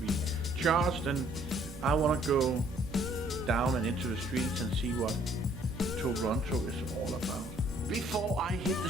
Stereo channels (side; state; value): both; normal; correlation 0.62